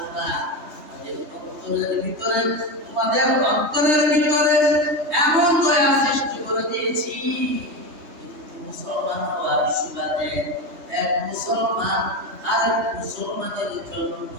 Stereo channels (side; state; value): left; late; 3.2 ms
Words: অন্তরের ভিতরে, তোমাদের অন্তরের ভিতরে এমন দয়া সৃষ্টি করে দিয়েছি। কিন্তু মুসলমান হওয়ার সুবাদে এক মুসলমান আরেক মুসলমানের জন্য